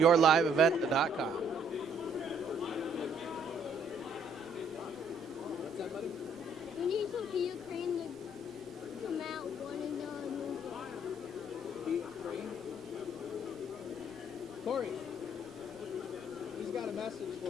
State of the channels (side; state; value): both; normal; correlation 0.65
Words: We need some Ukraine to come out one and Corey, he's got a message